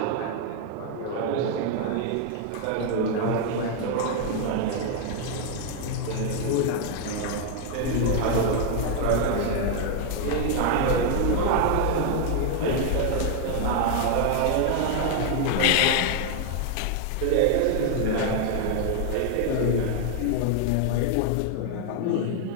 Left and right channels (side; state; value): both; different; correlation 0.00